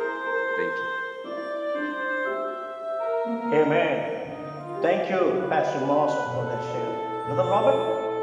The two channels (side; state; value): both; identical; correlation 1.00